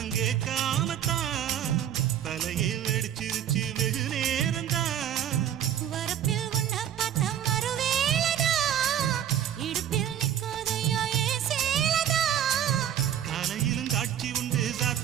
காமத்தான் தலையை வெடிச்சிருச்சு வெகு நேரம்தான் வரப்பில் உன்ன பார்த்த மறுவேளதா இடுப்பில் நிற்காதையா ஏ சேலதா காலையிலும் காட்சி உண்டு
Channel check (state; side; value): quieter; left; 10.3 dB